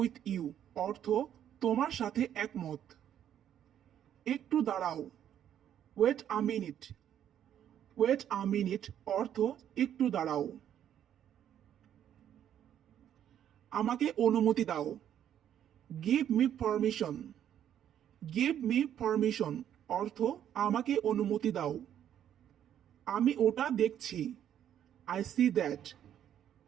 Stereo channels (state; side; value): quieter; left; 10.1 dB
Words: you অর্থ তোমার সাথে একমত। একটু দাঁড়াও। Wait a minute. Wait a minute অর্থ একটু দাঁড়াও। আমাকে অনুমতি দাও। Give me permission. Give me permission অর্থ আমাকে অনুমতি দাও। আমি ওটা দেখছি। I see that.